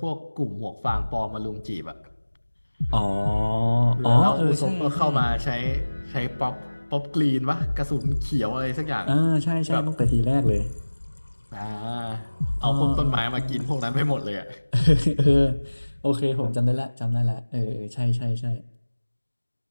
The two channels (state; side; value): inverted; both; correlation -1.00